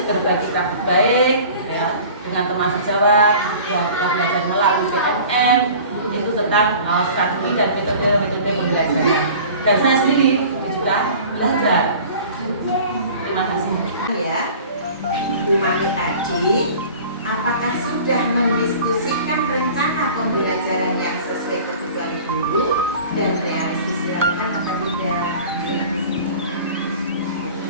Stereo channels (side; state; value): both; inverted; correlation -0.43